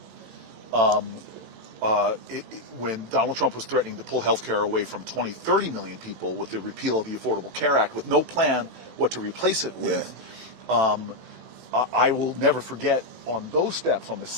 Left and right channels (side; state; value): left; late; 16 ms